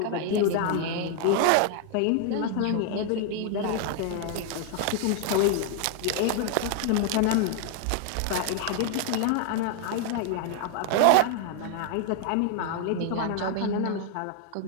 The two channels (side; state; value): both; different; correlation 0.00